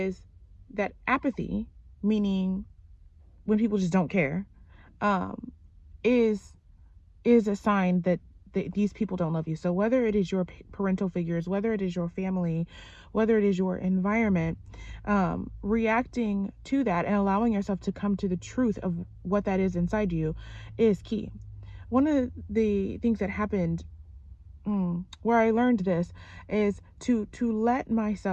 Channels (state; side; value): identical; both; correlation 1.00